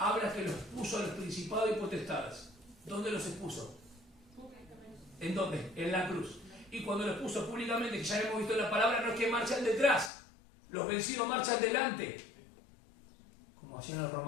que los puso a los principados y potestades. ¿Dónde los expuso? ¿En dónde? En la cruz. Y cuando los puso públicamente, que ya hemos visto en la palabra, no es que marchan detrás. Los vencidos marchan delante. Como hacían los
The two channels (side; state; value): right; drops out; at 10.1 s